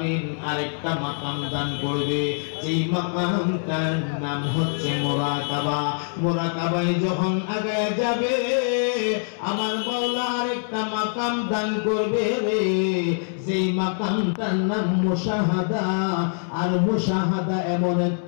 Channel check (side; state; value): right; silent; 62 dB below the other